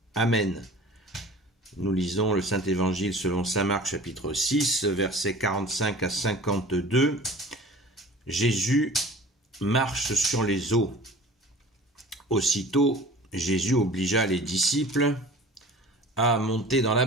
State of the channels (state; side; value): normal; both; correlation 0.43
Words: Amen. Nous lisons le Saint-Évangile selon saint Marc, chapitre 6, versets 45 à 52. Jésus marche sur les eaux. Aussitôt, Jésus obligea les disciples à monter dans la